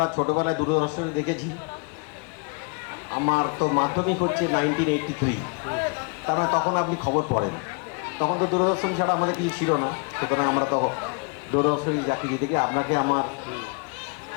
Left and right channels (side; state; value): right; quieter; 35.1 dB